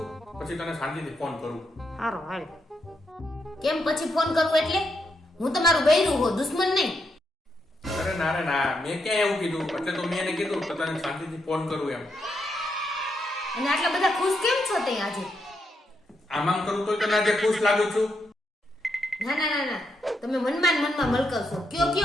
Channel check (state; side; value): normal; both; correlation 0.81